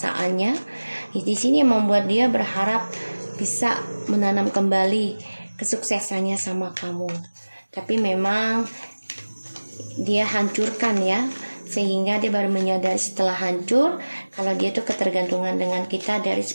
Di sini yang membuat dia berharap bisa menanam kembali kesuksesannya sama kamu. Tapi memang dia hancurkan ya, sehingga dia baru menyadari setelah hancur kalau dia tuh ketergantungan dengan kita dari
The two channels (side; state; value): both; inverted; correlation -1.00